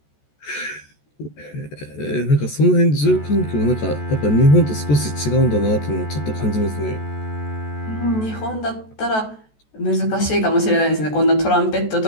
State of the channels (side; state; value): right; late; 14 ms